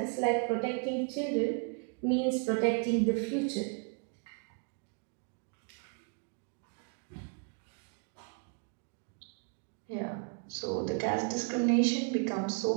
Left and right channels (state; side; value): quieter; left; 39.1 dB